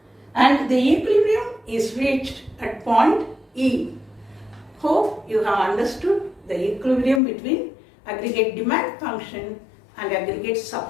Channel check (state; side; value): drops out; right; at 7.2 s